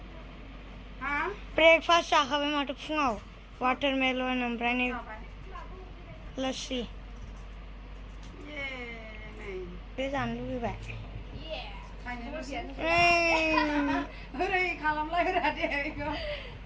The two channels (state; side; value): identical; both; correlation 1.00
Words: हा ब्रेकफास्ट जाखाबाय माथो फुङाव वाटारमेलन ओमफ्राय नै लस्सि बे जानो लुबैबाय ओरै खालामलायग्रा दे